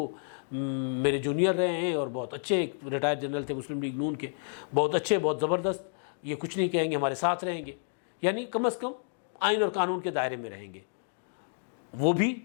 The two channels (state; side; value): silent; right; digital silence